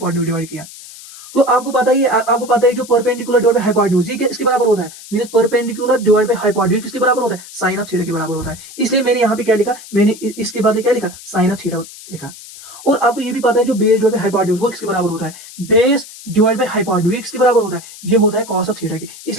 डिवाइड किया। तो आपको पता है जो परपेंडिकुलर डिवाइड बाय हाइपोटेन्यूज ये किसके बराबर होता है, means perpendicular divide by hypotenuse किसके बराबर होता है, साइन ऑफ थीटा के बराबर होता है। इसलिए मैंने यहाँ पे क्या लिखा, मैंने इसके बाद क्या लिखा, साइन ऑफ थीटा लिखा। और आपको ये भी पता है जो बेस डिवाइड बाय हाइपोटेन्यूज वो किसके बराबर होता है, बेस डिवाइड बाय हाइपोटेन्यूज किसके बराबर होता है, ये होता है कॉस ऑफ थीटा के।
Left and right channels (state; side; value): noise; left; hiss, 17 dB below the sound